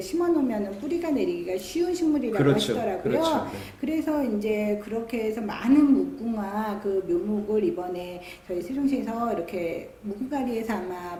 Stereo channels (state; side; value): identical; both; correlation 1.00